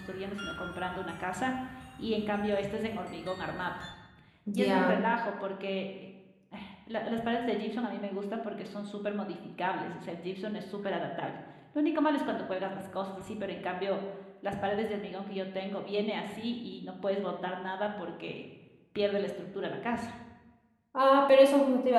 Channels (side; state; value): both; identical; correlation 1.00